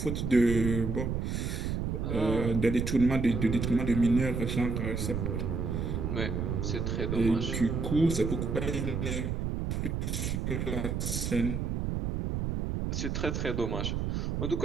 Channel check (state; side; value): noise; right; rumble, 1 dB below the sound